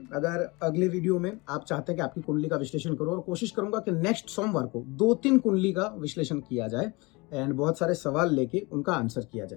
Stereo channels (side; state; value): right; quieter; 25.5 dB